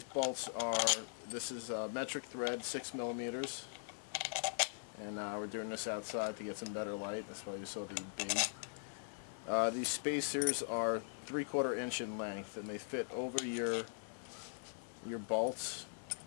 bolts are, this is metric thread, 6mm, and we're doing this outside to get some better light. That's why you saw the B. These spacers are 3/4 inch in length, and they fit over your bolts.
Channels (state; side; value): silent; right; digital silence